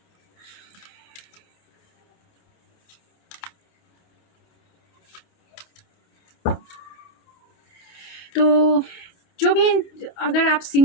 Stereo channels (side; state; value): right; late; 28 ms